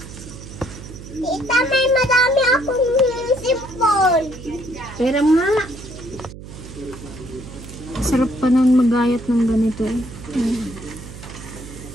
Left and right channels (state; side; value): noise; right; hum, 14 dB below the sound